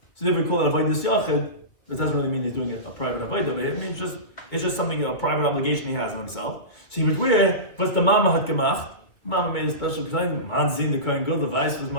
So if we call it avodas yachid, that doesn't really mean he's doing a private avodah. It means it's just something, a private obligation he has on himself. So he would wear, but the mama had gemacht. Mama made a special design. Manzin the Kohen Gadol, the vice was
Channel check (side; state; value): right; late; 2.5 ms